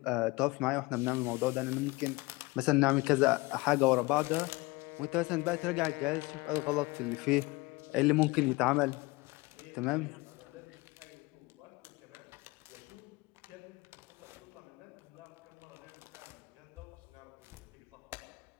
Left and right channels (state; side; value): quieter; right; 23.4 dB